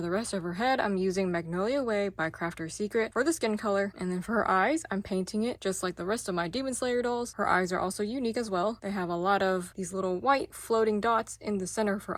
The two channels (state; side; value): identical; both; correlation 1.00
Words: the rest of her head I'm using Magnolia Way by Crafter's Secret for the skin color, and then for her eyes I'm painting it just like the rest of my Demon Slayer dolls. Her eyes are also unique as well. They have a lot of these little white floating dots in the center of her